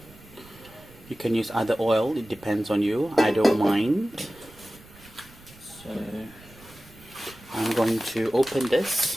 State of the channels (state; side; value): noise; right; rumble, 23 dB below the sound